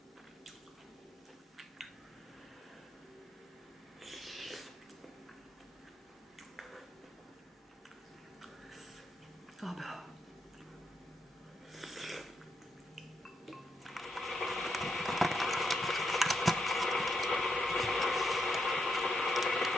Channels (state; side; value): normal; both; correlation 0.81